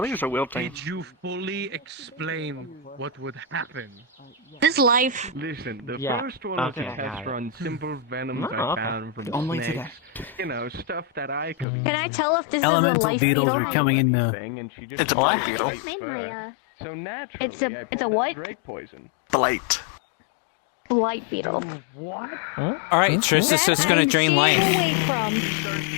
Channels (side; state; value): right; drops out; at 11.7 s